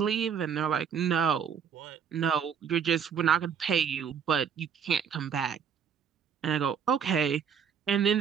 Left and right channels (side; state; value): left; quieter; 7.4 dB